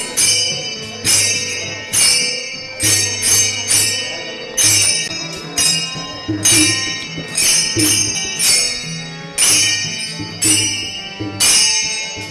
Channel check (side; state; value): both; identical; correlation 1.00